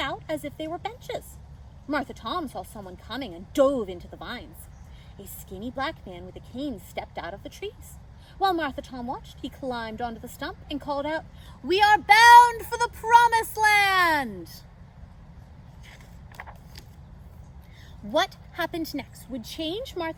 as if they were benches. Martha Tom saw someone coming and dove into the vines. A skinny black man with a cane stepped out of the trees. While Martha Tom watched, he climbed onto the stump and called out, "We are bound for the Promised Land!" What happened next would change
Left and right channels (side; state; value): both; identical; correlation 1.00